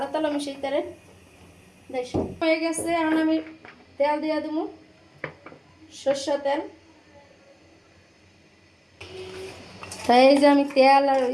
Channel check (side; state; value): both; identical; correlation 1.00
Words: তেলও মিশাইতে পারেন। হয়ে গেছে, এখন আমি তেল দিয়ে দেবো, সরষে তেল। তাই এই যে আমি তেল আর